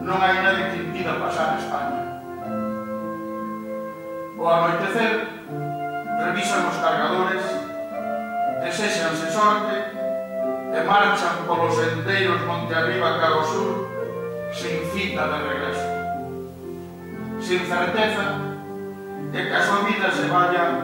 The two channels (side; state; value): both; identical; correlation 1.00